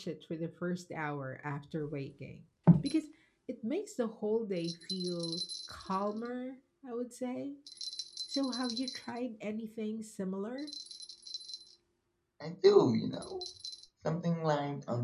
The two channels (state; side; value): identical; both; correlation 1.00